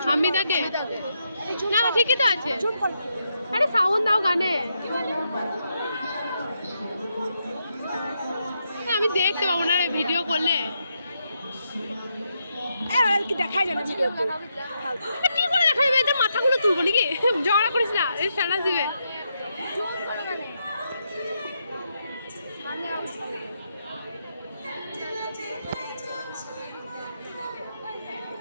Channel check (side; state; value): both; inverted; correlation -0.81